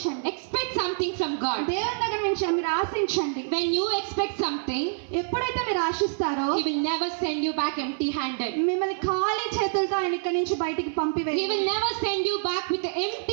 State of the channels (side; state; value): left; silent; 61 dB below the other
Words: Expect something from God. దేవుని దగ్గర నుంచి మీరు ఆశించండి. When you expect something, ఎప్పుడైతే మీరు ఆశిస్తారో He will never send you back empty-handed. మిమ్మల్ని ఖాళీ చేతులతో ఆయన ఇక్కడి నుంచి బయటికి He పంపివేయరు. will never send you back with an